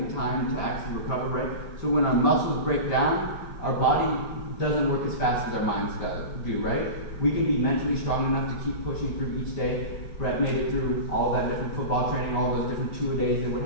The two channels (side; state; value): right; late; 5.1 ms